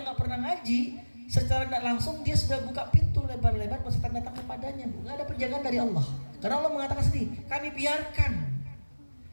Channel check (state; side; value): inverted; both; correlation -1.00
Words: gak pernah ngaji, secara tidak langsung dia sudah buka pintu lebar-lebar buat setan datang kepadanya, Bu. Gak ada penjagaan dari Allah. Karena Allah mengatakan sendiri, kami biarkan.